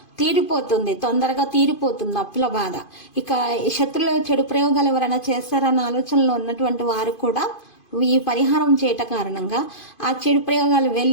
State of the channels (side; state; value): right; late; 2.5 ms